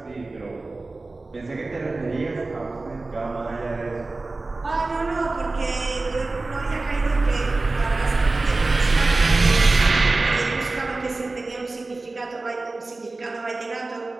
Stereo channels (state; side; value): quieter; left; 3.3 dB